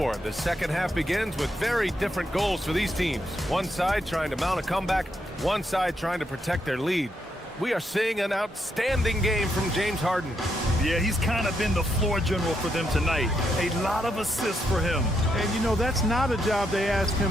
the second half begins with very different goals for these teams. One side trying to mount a comeback, one side trying to protect their lead. We are seeing an outstanding game from James Harden. Yeah, he's kind of been the floor general for them tonight. A lot of assists for him. And, you know, that's not a job they ask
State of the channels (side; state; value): both; normal; correlation 0.79